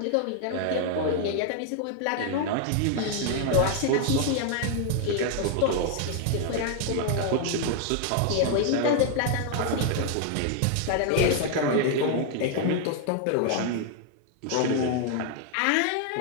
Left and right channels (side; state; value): both; different; correlation 0.00